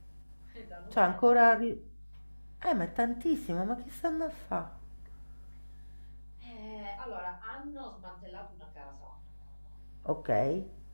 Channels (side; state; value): both; inverted; correlation -1.00